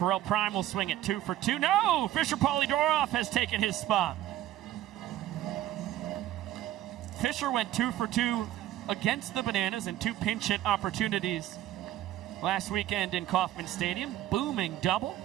Prime will swing it 2 for 2. No! Fisher Polydorov has taken his spot. Fisher went 2 for 2 against the Bananas in 2 pinch hit opportunities last weekend in Kauffman Stadium. Booming double.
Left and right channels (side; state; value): left; quieter; 13.7 dB